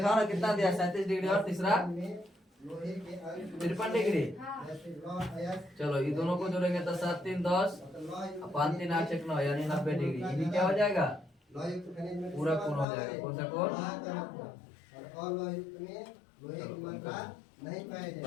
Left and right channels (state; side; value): drops out; right; at 12.9 s